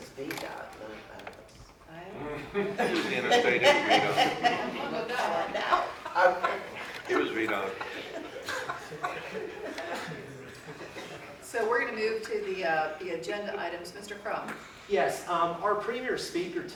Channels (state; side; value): identical; both; correlation 1.00